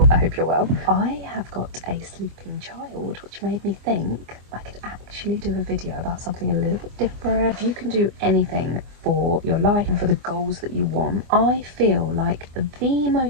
I hope you're well. I have got a sleeping child, which made me think I could actually do a video about something a little bit different. If you can do anything for your life and for the goals that you want, I feel like the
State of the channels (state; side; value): late; left; 24 ms